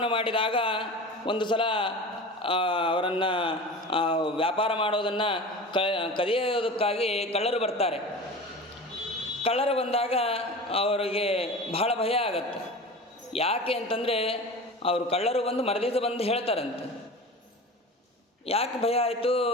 ಮಾಡಿದಾಗ ಒಂದು ಸಲ ಅವರನ್ನು ವ್ಯಾಪಾರ ಮಾಡೋದನ್ನು ಕದಿಯೋದಕ್ಕಾಗಿ ಕಳ್ಳರು ಬರ್ತಾರೆ. ಕಳ್ಳರು ಬಂದಾಗ ಅವರಿಗೆ ಬಹಳ ಭಯ ಆಗತ್ತೆ. ಯಾಕೆ ಅಂತಂದರೆ, ಅವರು ಕಳ್ಳರು ಬಂದು ಮರದಿವಸ ಬಂದು ಹೇಳ್ತಾರಂತೆ. ಯಾಕೆ ಭಯ ಆಯಿತು?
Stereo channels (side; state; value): both; normal; correlation 0.34